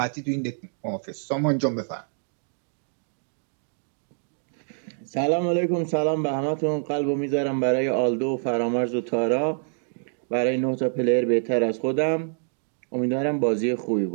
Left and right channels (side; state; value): left; silent; digital silence